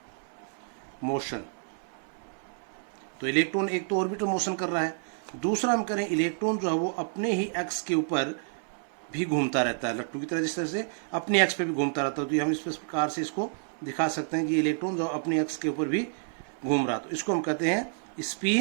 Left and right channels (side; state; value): left; silent; 58 dB below the other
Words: मोशन। तो इलेक्ट्रॉन एक तो ऑर्बिटल मोशन कर रहा है, दूसरा हम करें इलेक्ट्रॉन जो है वो अपने ही एक्स के ऊपर भी घूमता रहता है, लट्टू की तरह जिस तरह से अपने एक्स पे भी घूमता रहता है। तो हम इस प्रकार से इसको दिखा सकते हैं कि इलेक्ट्रॉन जो अपने एक्स के ऊपर भी घूम रहा, तो इसको हम कहते हैं